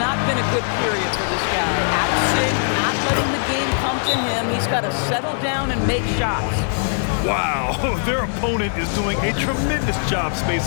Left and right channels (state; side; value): silent; right; 57 dB below the other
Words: been a good period for this guy. Absent, not letting the game come to him. He's got to settle down and make shots. Wow, their opponent is doing a tremendous job